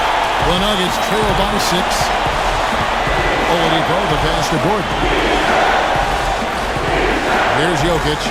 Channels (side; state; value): both; identical; correlation 1.00